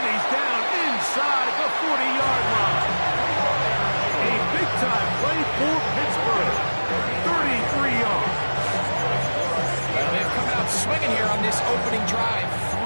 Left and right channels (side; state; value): both; inverted; correlation -1.00